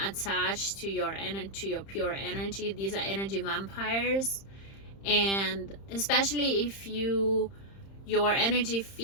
attach to your pure energy. These are energy vampires, and especially if your energy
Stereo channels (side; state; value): right; late; 30 ms